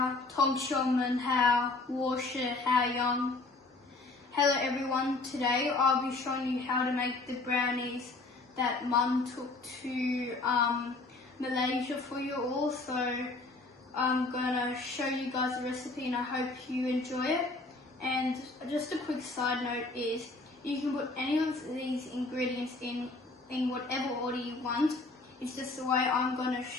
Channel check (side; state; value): right; quieter; 3.3 dB